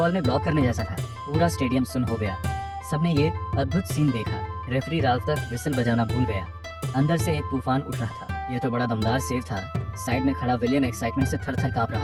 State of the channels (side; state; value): both; identical; correlation 1.00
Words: में ब्लॉक करने जैसा था। पूरा स्टेडियम सुन हो गया। सबने ये अद्भुत सीन देखा। रेफरी रात तक विसल बजाना भूल गया। अंदर से एक तूफान उठ रहा था। ये तो बड़ा दमदार सेव था। साइड में खड़ा विलियम एक्साइटमेंट से थर थर कांप